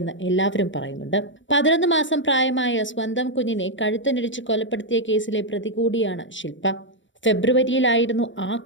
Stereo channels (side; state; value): right; late; 0.55 ms